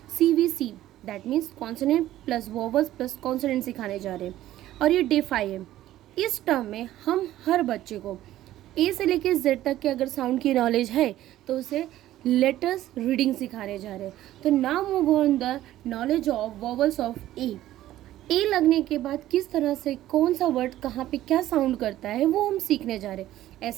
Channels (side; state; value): left; quieter; 14.0 dB